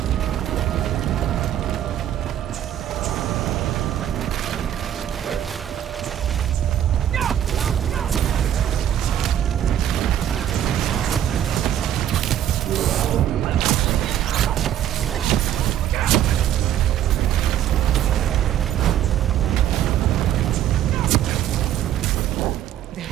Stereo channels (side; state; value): left; quieter; 11.0 dB